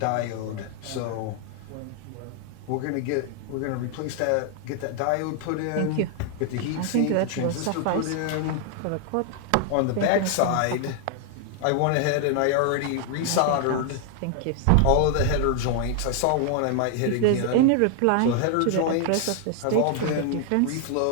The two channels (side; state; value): both; different; correlation 0.00